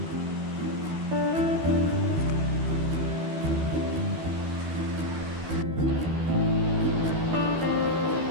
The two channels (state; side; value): late; left; 12 ms